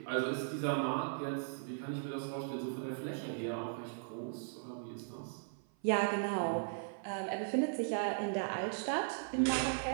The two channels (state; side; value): silent; left; 53 dB below the other